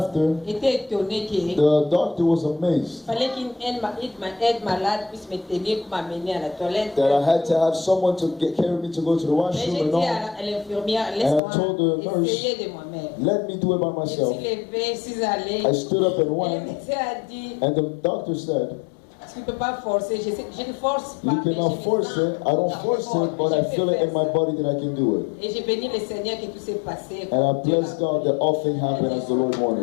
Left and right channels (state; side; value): drops out; right; at 11.4 s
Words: étaient étonnés qu'il the doctor was amazed fallait qu'une aide malade puisse me tenir pour m'amener à la toilette. that I had to have someone to carry me to go to the Mais washroom j'ai and dit all. à l'infirmière, And I told the laisse-moi nurse, essayer de moi-même. Let me do it by Je me myself. suis levée, je suis allée. I stood up and Et le went, médecin a dit, and the doctor said, tu ne peux pas forcer. Je ne force pas. you mais cannot je me force sens it. I don't force fort, it, but je I peux feel it faire in my ça. body that I can do it. Et j'ai béni le Seigneur que tout s'est passé. And I bless God that all things happen as the Lord